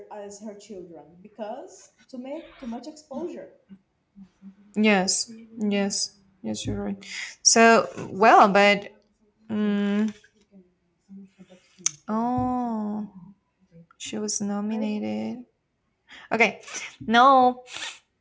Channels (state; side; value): identical; both; correlation 1.00